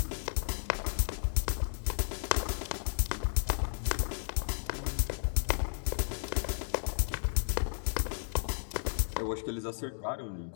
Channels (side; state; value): right; silent; digital silence